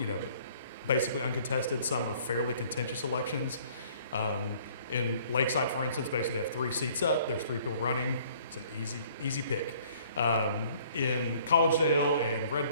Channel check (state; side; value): inverted; both; correlation -0.57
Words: basically uncontested. Some are fairly contentious elections. In Lakeside, for instance, basically they have 3 seats up. There's 3 people running. It's an easy pick. In Collegedale and Red